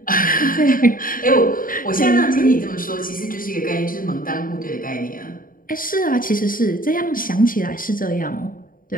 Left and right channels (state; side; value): late; right; 0.41 ms